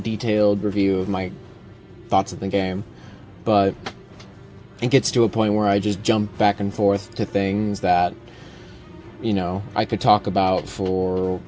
review of my thoughts of the game, but it gets to a point where I just jump back and forth to things that, you know, I could talk about for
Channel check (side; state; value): both; identical; correlation 1.00